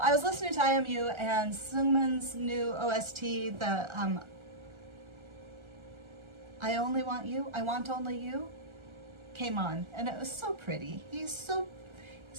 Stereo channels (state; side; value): late; left; 1.3 ms